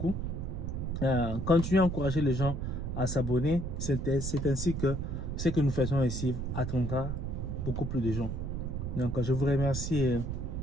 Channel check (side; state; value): right; noise; rumble, 3 dB below the sound